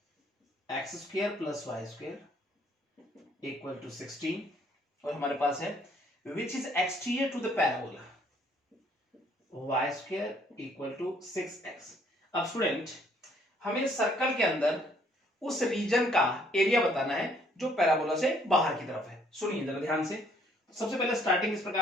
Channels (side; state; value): both; normal; correlation 0.64